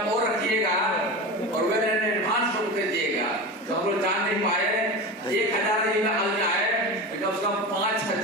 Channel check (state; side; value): normal; both; correlation 0.27